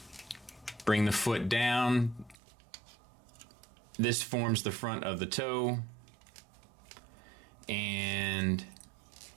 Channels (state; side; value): drops out; left; at 2.4 s